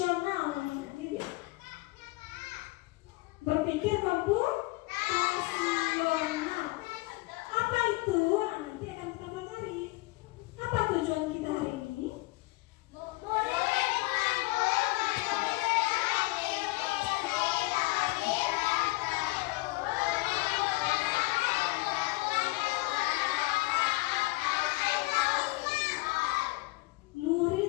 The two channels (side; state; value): right; quieter; 22.9 dB